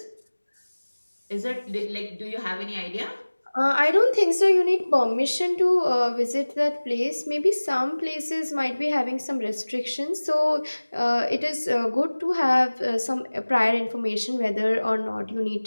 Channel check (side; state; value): both; inverted; correlation -1.00